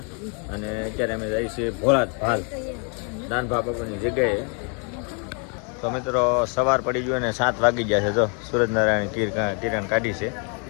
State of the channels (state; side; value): quieter; right; 38.2 dB